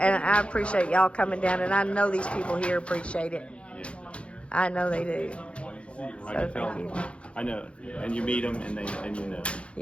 I appreciate y'all coming down, and I know these people here appreciate it. Yeah. I know they do. I So can tell. thank you. I know, and you meet them, and you know.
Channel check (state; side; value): late; right; 0.060 ms